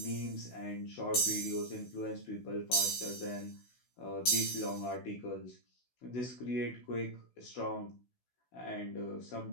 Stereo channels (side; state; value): right; late; 16 ms